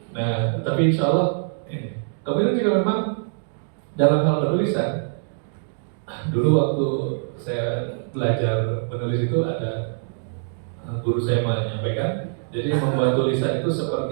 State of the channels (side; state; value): left; silent; digital silence